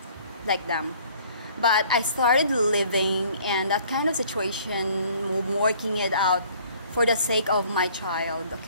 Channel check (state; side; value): inverted; both; correlation -0.55